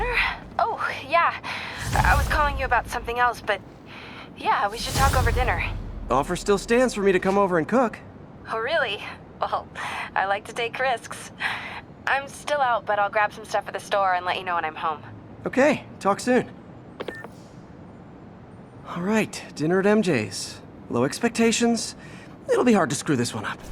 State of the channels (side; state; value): both; identical; correlation 1.00